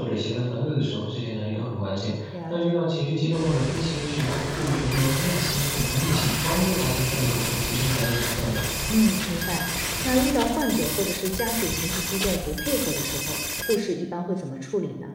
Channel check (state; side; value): identical; both; correlation 1.00